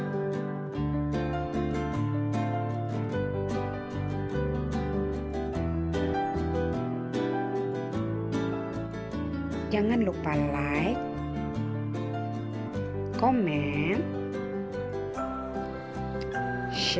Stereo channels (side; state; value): both; identical; correlation 1.00